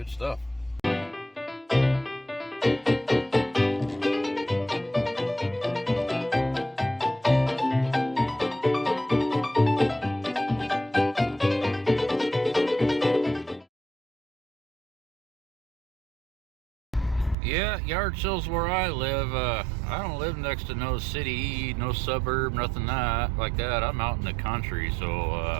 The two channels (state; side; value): drops out; left; at 17.4 s